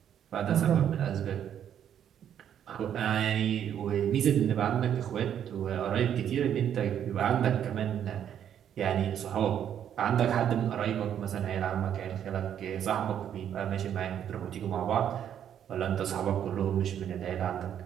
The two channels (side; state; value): left; quieter; 9.5 dB